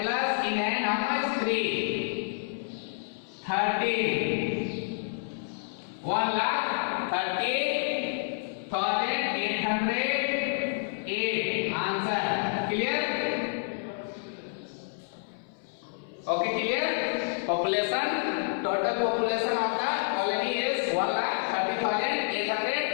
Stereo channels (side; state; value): right; silent; 59 dB below the other